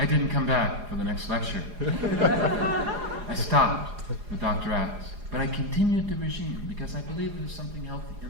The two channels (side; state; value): left; late; 4.9 ms